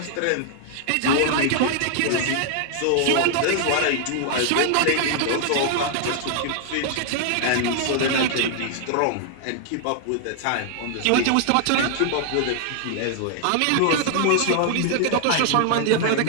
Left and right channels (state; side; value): different; both; correlation 0.00